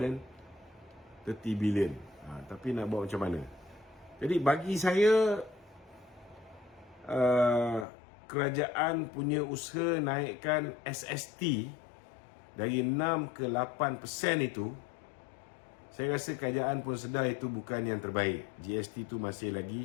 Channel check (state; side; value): drops out; right; at 7.9 s